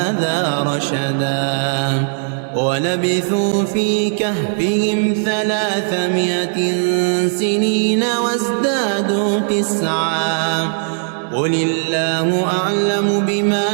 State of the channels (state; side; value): silent; left; digital silence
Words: رشدا ولبثوا في كهفهم 300 سنين وازدادوا 9 قل الله أعلم بما